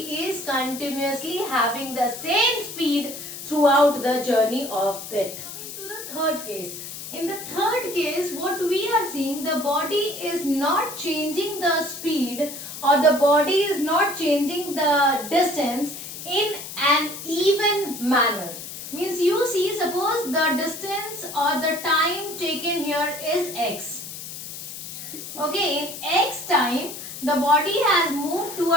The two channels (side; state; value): left; noise; hiss, 10 dB below the sound